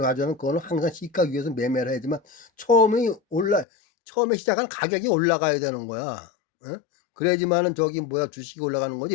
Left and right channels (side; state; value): right; drops out; at 3.7 s